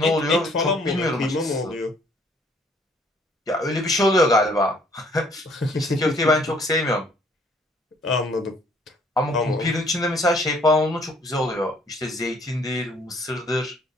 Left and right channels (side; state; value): both; normal; correlation 0.62